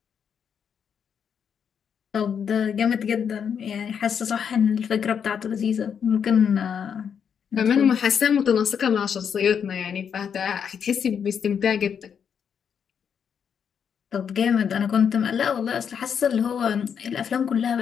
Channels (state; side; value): quieter; right; 7.5 dB